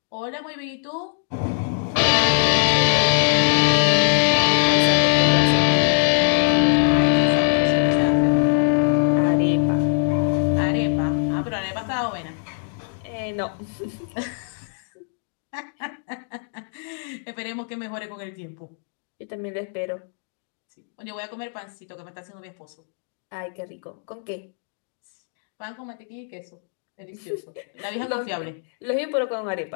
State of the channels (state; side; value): silent; right; digital silence